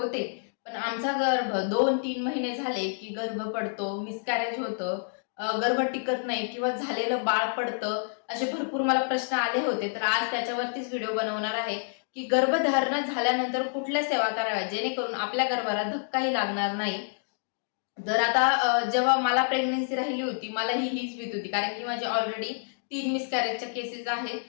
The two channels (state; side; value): silent; right; digital silence